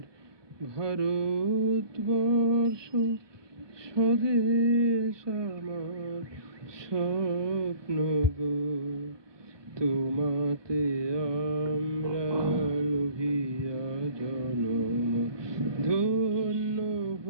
ভারতবর্ষ স্বদেশ আমার, স্বপ্ন গো। তোমাতে আমরা লোভিয়া জনম, ধন্য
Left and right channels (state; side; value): late; left; 1.2 ms